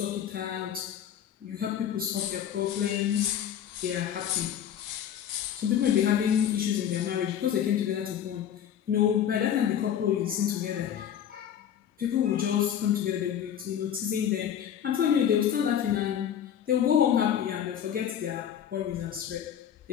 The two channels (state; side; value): quieter; right; 9.5 dB